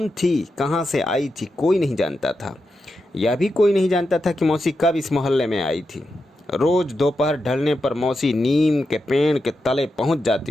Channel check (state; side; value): normal; both; correlation 0.88